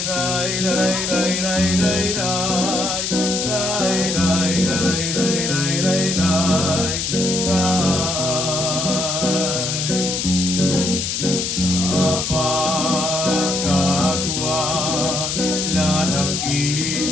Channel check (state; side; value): noise; left; hiss, 1 dB below the sound